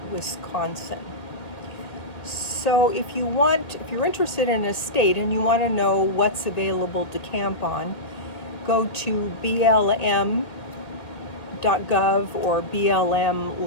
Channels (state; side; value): late; right; 1.9 ms